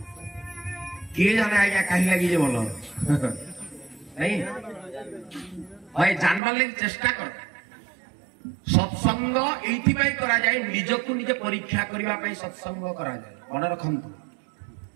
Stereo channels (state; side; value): drops out; left; at 6.4 s